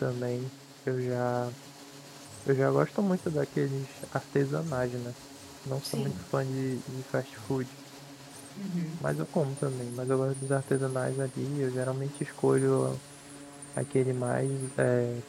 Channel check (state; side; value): identical; both; correlation 1.00